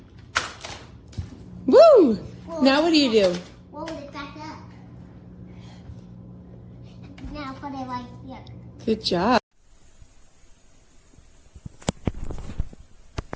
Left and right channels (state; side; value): identical; both; correlation 1.00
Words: Woo! Now what do you do? Roll it back up. Now put it like here. Good job.